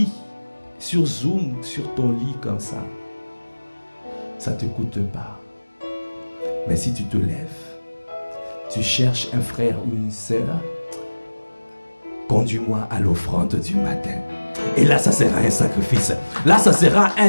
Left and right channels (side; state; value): both; inverted; correlation -1.00